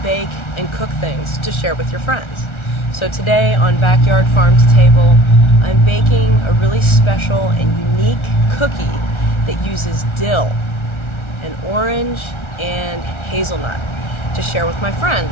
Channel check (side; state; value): right; late; 1.4 ms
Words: bake and cook things to share with your friends. So today on Backyard Farm to Table, I'm baking a really special and unique cookie that uses dill and orange and hazelnut to share with my